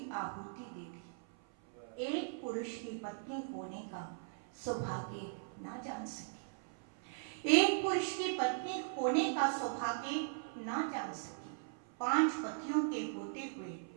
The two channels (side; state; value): left; silent; 52 dB below the other